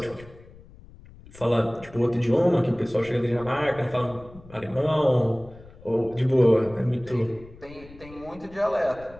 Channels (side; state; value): left; noise; rumble, 21 dB below the sound